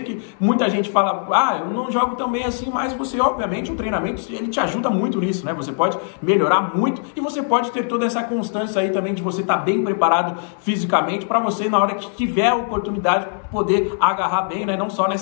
que muita gente fala, eu não jogo tão bem assim, mas você, obviamente, o treinamento, ele te ajuda muito nisso, né? Você pode melhorar muito e você pode ter toda essa constância aí também de você estar bem preparado fisicamente para você, na hora que tiver a oportunidade, poder agarrar bem, né? Não só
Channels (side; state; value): right; silent; 65 dB below the other